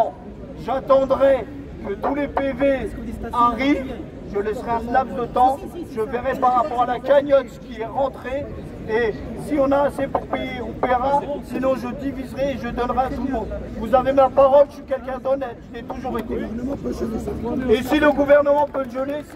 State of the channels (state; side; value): identical; both; correlation 1.00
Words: j'attendrai que tous les PV arrivent, je laisserai un laps de temps, je verrai par rapport à la cagnotte ce qui est rentré, et si on a assez pour payer, on paiera, sinon je diviserai et je donnerai à tout le monde. Vous avez ma parole, je suis quelqu'un d'honnête, je l'ai toujours été. Et si le gouvernement peut le geler,